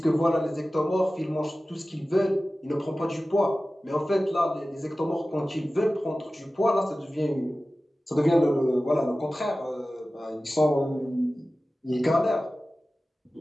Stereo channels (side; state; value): both; normal; correlation 0.96